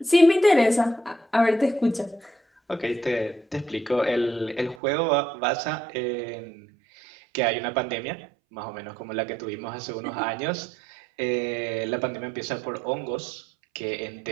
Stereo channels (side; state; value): left; drops out; at 4.8 s